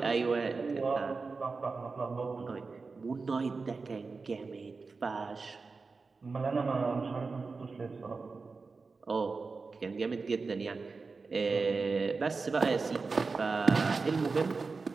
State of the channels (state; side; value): quieter; left; 4.3 dB